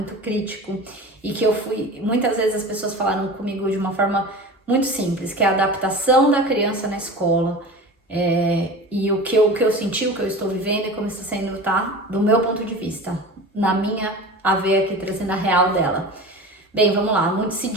crítico, e que muitas vezes as pessoas falaram comigo de uma forma muito simples, que é a adaptação da criança na escola, e o que eu senti, o que eu estou vivendo e como está sendo, tá? Do meu ponto de vista, na minha a ver aqui, trazendo a real dela. Bem, vamos lá, muito se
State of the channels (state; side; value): normal; both; correlation 0.34